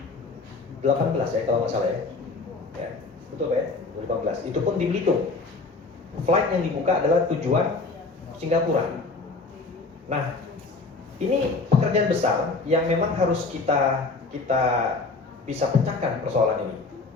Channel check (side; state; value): right; quieter; 3.8 dB